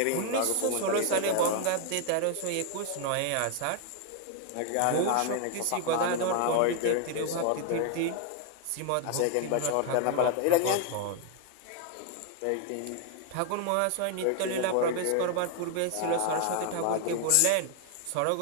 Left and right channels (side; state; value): both; different; correlation 0.00